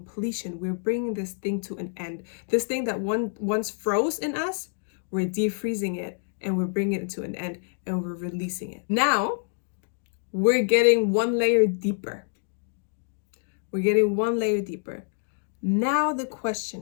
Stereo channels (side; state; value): right; silent; digital silence